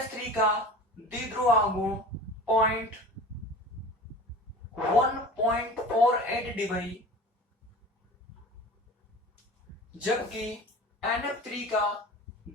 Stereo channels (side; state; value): both; normal; correlation 0.38